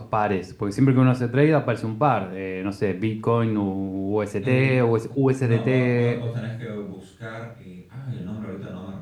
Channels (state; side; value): identical; both; correlation 1.00